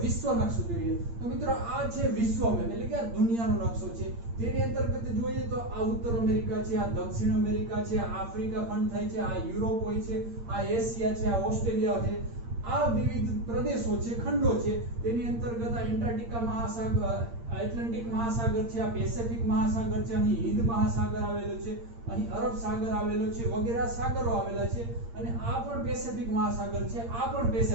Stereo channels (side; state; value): left; late; 8.7 ms